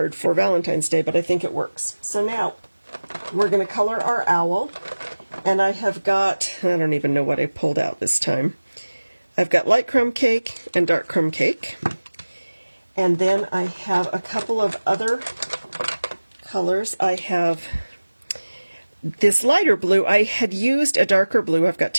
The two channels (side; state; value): both; inverted; correlation -1.00